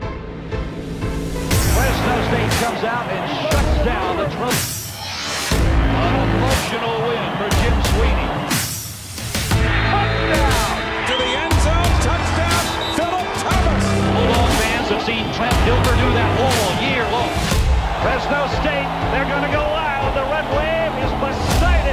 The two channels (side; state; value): both; identical; correlation 1.00